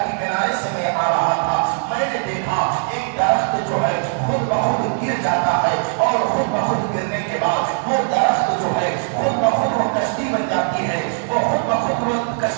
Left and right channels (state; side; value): silent; left; 65 dB below the other